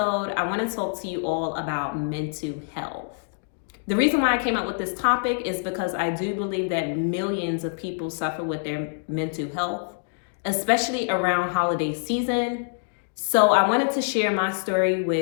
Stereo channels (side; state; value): right; silent; digital silence